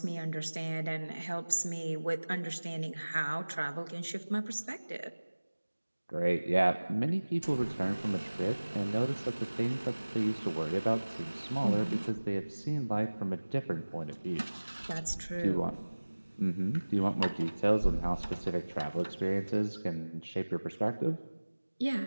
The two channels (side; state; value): both; inverted; correlation -1.00